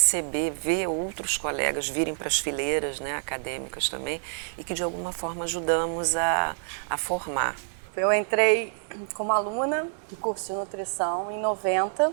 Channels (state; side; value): silent; left; 57 dB below the other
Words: ver outros colegas virem para as fileiras, né, acadêmicas também, e que de alguma forma ajudamos a formar. Eu entrei como aluna do curso de nutrição em 90,